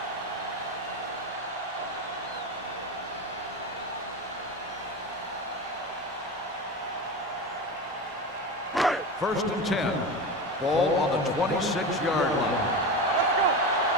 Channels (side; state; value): both; normal; correlation 0.23